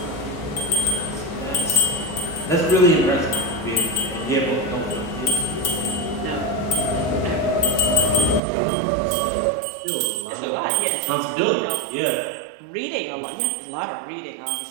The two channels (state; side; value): drops out; left; at 8.4 s